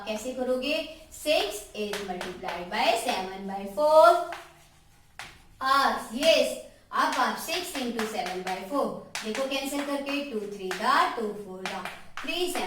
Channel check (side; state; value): both; identical; correlation 1.00